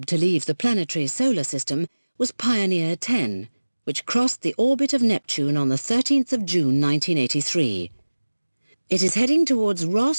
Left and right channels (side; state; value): both; inverted; correlation -1.00